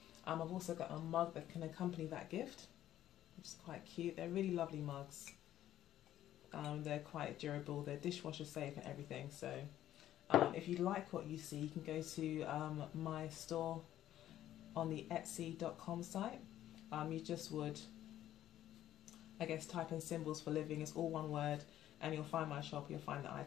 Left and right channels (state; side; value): quieter; right; 12.4 dB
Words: I've also got a mug that can accompany that gift, which is quite cute. They're really lovely mugs. They're quite durable, they're dishwasher safe and everything. So if you like what you see, you can go to my store on the etsy.com site. You just would, I guess, type in Symbols for Living, it's all one word, and you'll find my shop, you'll find the